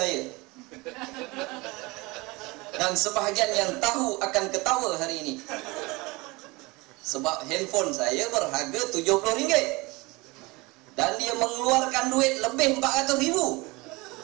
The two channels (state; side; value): quieter; left; 24.1 dB